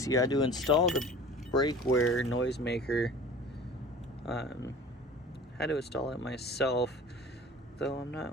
You had to install the brake wear noisemaker. Had to install it myself, though I'm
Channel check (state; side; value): normal; both; correlation 0.43